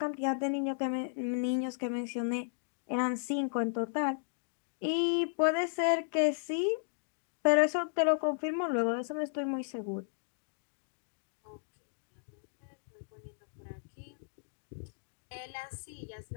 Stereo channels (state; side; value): silent; right; digital silence